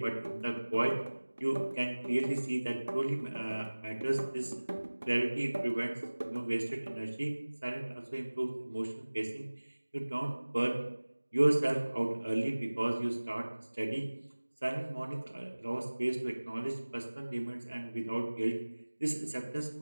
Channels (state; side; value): inverted; both; correlation -1.00